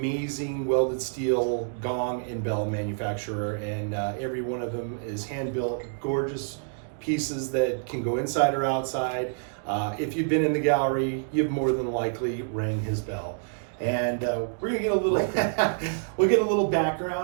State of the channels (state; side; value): silent; left; digital silence